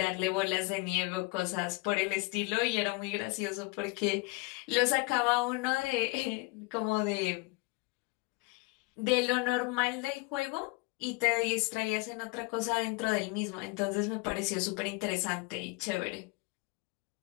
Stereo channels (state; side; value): quieter; right; 25.6 dB